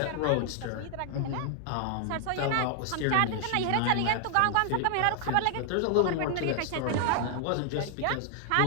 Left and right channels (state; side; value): different; both; correlation 0.00